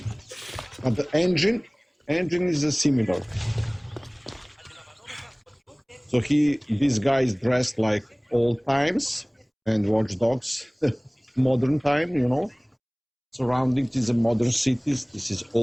but the engine is similar. So this guy is dressed like old times, and Watch Dogs, modern time, you know. Surroundings is a modern cities, this is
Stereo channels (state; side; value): identical; both; correlation 1.00